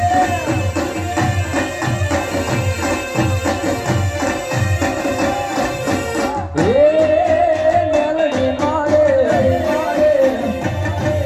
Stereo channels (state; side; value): identical; both; correlation 1.00